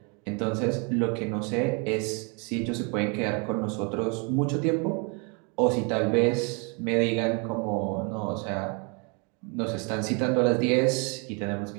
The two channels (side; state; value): left; quieter; 33.6 dB